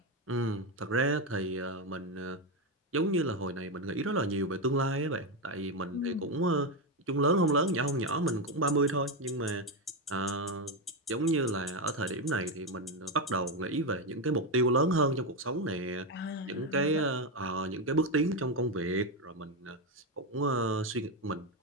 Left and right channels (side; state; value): both; normal; correlation 0.09